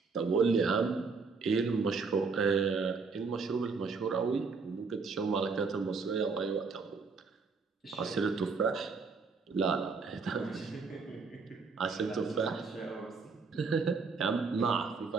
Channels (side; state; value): left; quieter; 4.7 dB